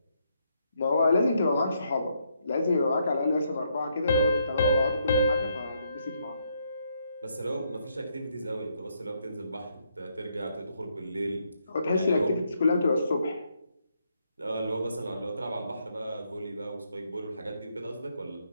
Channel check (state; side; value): inverted; both; correlation -0.75